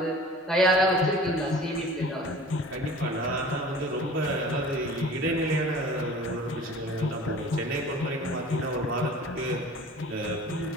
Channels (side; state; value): both; normal; correlation 0.44